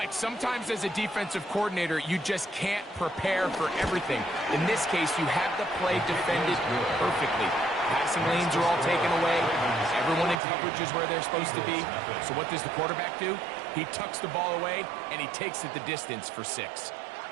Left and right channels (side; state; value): left; drops out; at 10.4 s